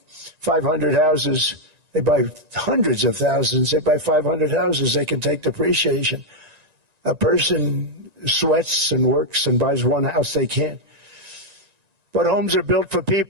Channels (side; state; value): left; late; 1.9 ms